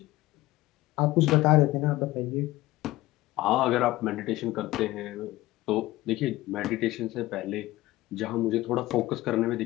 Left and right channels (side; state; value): right; quieter; 17.7 dB